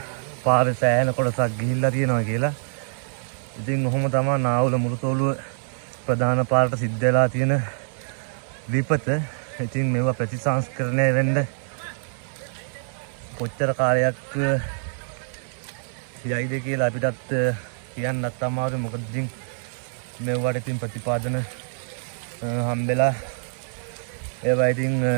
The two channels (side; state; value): left; silent; 56 dB below the other